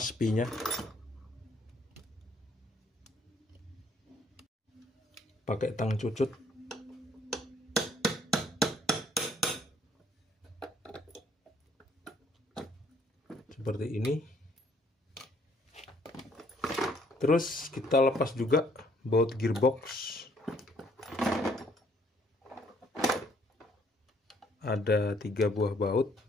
spinya. Pakai tang cucut. Seperti ini. Terus kita lepas juga baut gearbox. Ada 3 buah baut.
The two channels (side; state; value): both; normal; correlation 0.65